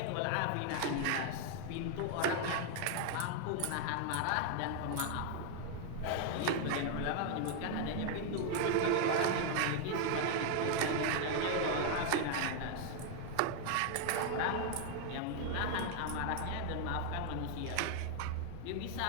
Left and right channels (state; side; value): different; both; correlation 0.00